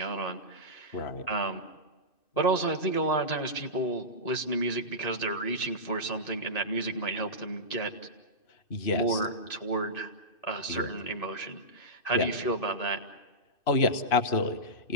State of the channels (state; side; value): late; right; 2.6 ms